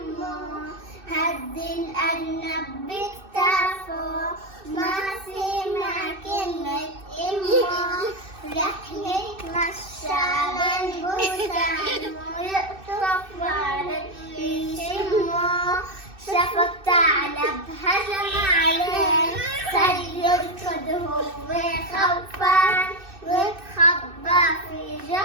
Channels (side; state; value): left; late; 2.6 ms